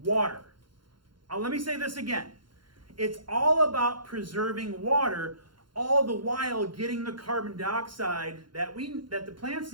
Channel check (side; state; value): left; late; 0.72 ms